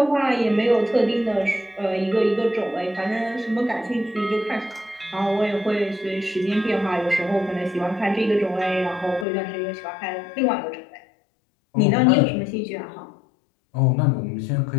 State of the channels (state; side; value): drops out; right; at 9.2 s